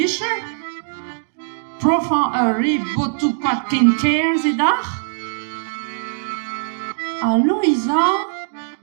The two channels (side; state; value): left; silent; digital silence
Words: Profan a re botu kwad ken ker ze d'ar? A Louisa,